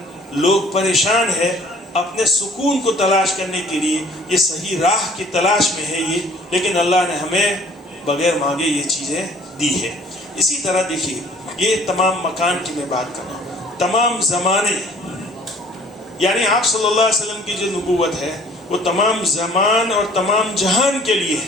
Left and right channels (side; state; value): both; normal; correlation 0.54